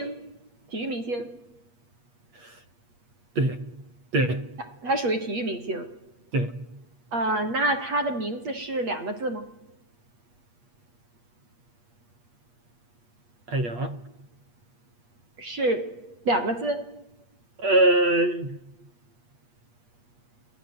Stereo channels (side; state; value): left; late; 8.4 ms